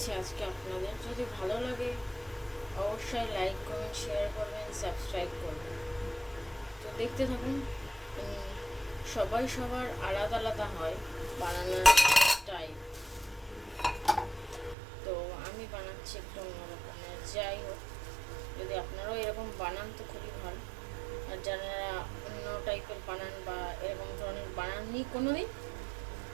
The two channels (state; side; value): drops out; left; at 14.8 s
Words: আজকে আপনাদের। যদি ভালো লাগে অবশ্যই লাইক, কমেন্ট, শেয়ার করবেন, সাবস্ক্রাইব করবেন। তো দেখতে থাকুন। সবাই সবার আলাদা আলাদা হয় বানানোর টাইপ। তো আমি বানাচ্ছি একটু অন্যরকমের। যাই হোক, যদি আপনারাও এরকম বানান তো খুবই ভালো। আর যারা অন্য টাইপের বানান বা এরকম ধরনের বানাননি কোনো দিন,